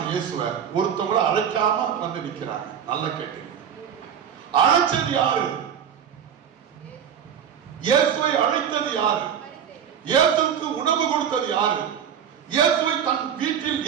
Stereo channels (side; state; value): left; quieter; 8.4 dB